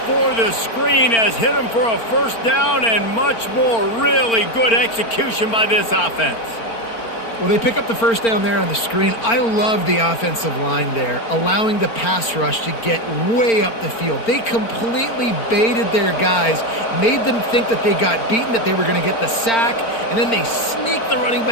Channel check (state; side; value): late; right; 4.4 ms